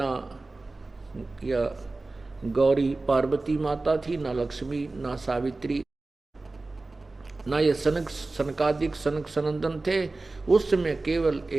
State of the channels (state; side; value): quieter; left; 3.3 dB